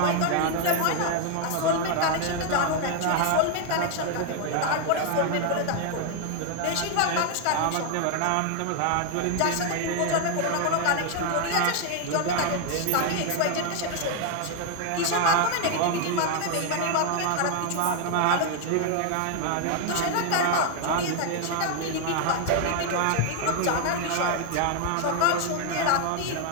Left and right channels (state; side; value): different; both; correlation 0.01